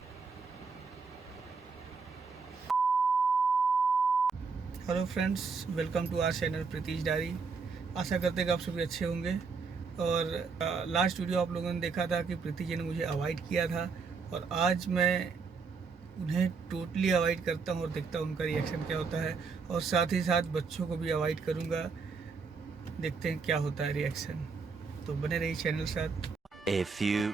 Hello friends, welcome to our channel Preetish diary. आशा करते हैं कि आप सभी अच्छे होंगे। और लास्ट वीडियो आप लोगों ने देखा था कि प्रीति जी ने मुझे अवॉइड किया था, और आज मैं उन्हें टोटली अवॉइड करता हूं और देखता हूं उनका रिएक्शन क्या होता है। और साथ ही साथ बच्चों को भी अवॉइड करूंगा, देखते हैं क्या होता है रिएक्शन। तो बने रहिए चैनल के साथ। A few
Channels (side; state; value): left; quieter; 5.0 dB